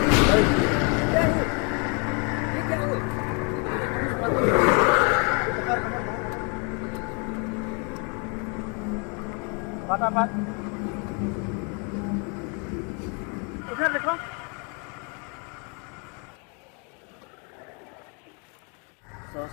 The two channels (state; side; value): quieter; right; 34.9 dB